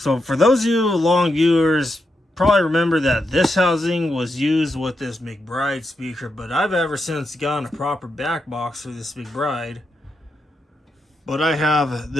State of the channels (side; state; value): both; normal; correlation 0.84